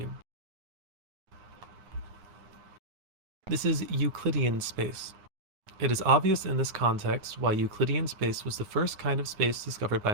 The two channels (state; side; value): late; left; 9.7 ms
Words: This is Euclidean space. It is obvious in this context why Euclidean space was the first kind of space discovered by